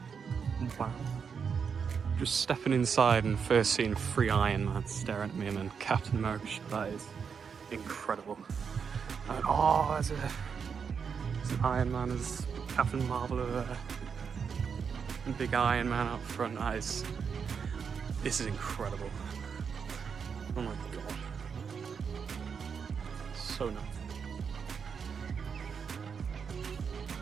Wow. Just stepping inside and first seeing 3 Iron Man staring at me, and then Captain America. That is incredible. And oh, there's an Iron Man, there's Captain Marvel over there. And big Iron Man out front. This is incredible. Oh my god. So nice.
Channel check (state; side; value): quieter; left; 6.3 dB